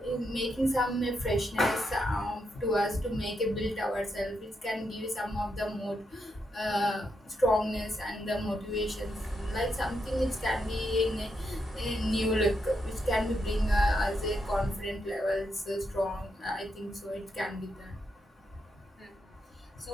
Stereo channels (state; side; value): normal; both; correlation 0.82